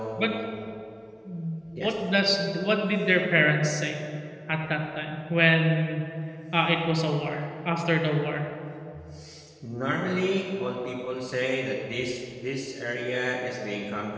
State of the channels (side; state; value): both; identical; correlation 1.00